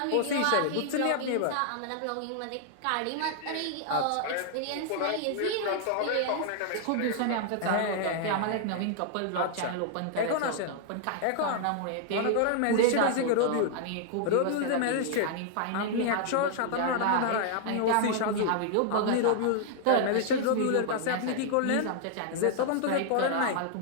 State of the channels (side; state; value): both; different; correlation -0.01